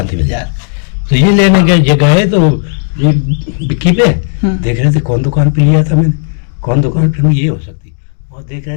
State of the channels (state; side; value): silent; right; digital silence